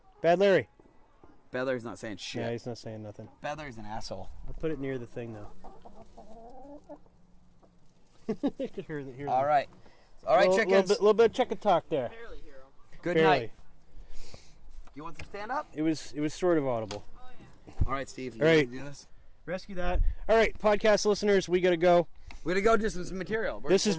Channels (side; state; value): both; identical; correlation 1.00